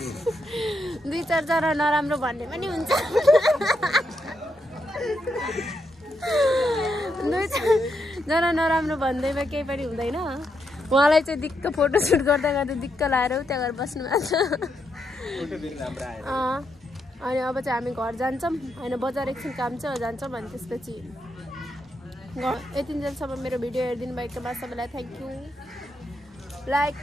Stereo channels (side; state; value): both; normal; correlation 0.81